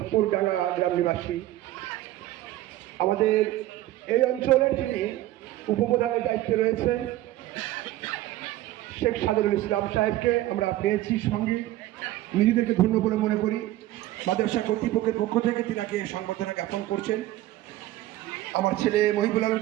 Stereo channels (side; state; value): left; quieter; 15.3 dB